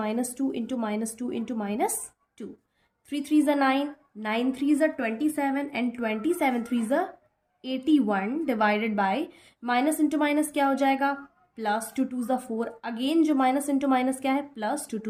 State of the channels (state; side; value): identical; both; correlation 1.00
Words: into -2 into -2। 3 3 ज़ा 9, 9 3 ज़ा 27 एंड 27 3 ज़ा 81 divided by minus into minus क्या हो जाएगा, प्लस 2 2 ज़ा 4। अगेन जो माइनस इंटू माइनस क्या है, प्लस 2